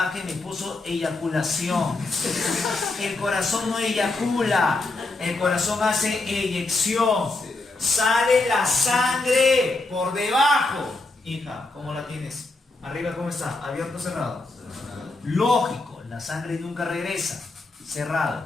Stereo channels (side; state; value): right; quieter; 3.2 dB